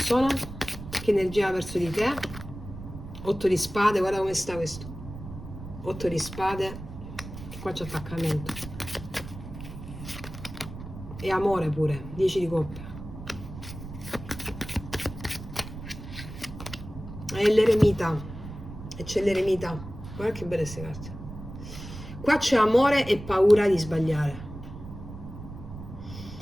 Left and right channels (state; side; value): noise; right; rumble, 12 dB below the sound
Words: che energia ha verso di te? 8 di spade, guarda come sta questo. 8 di spade, qua c'è attaccamento. E amore pure, 10 di coppe. E l'eremita. E c'è l'eremita. Guarda che belle queste carte. Qua c'è amore e paura di sbagliare.